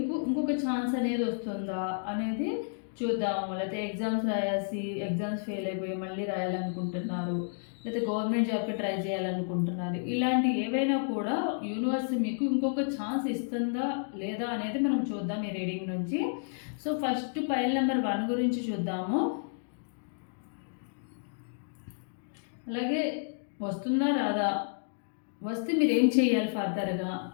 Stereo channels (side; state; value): right; silent; digital silence